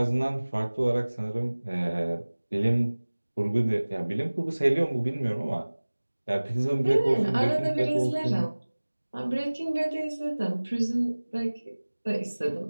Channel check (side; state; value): both; inverted; correlation -1.00